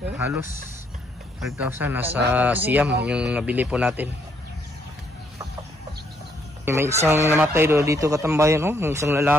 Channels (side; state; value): both; normal; correlation 0.72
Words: halos 5,000 nasa siyam yung nabili po natin. May isang namatay dito katambayan, yung isang